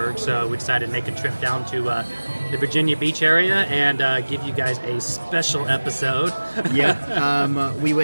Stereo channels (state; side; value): inverted; both; correlation -1.00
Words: so we decided to make a trip down to the Virginia Beach area and give you guys a special episode. We